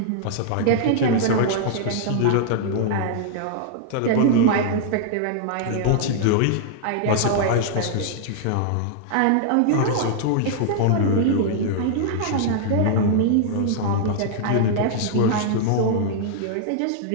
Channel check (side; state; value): both; different; correlation -0.01